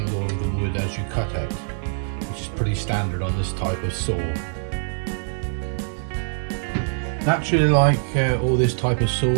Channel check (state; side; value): silent; left; digital silence